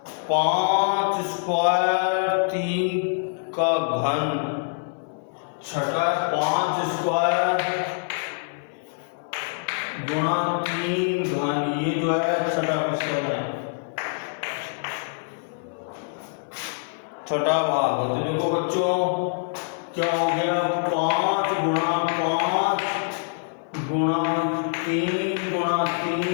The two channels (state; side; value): silent; right; 62 dB below the other